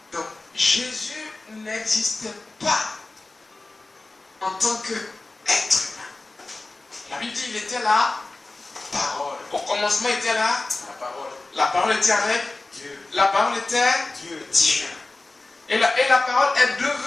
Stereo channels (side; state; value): right; quieter; 3.2 dB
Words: Donc, Jésus n'existait pas en tant qu'être humain. La Bible dit qu'il était la parole. Au commencement, il était là. La parole. La parole était avec Dieu. La parole était Dieu. Dieu. Et la parole est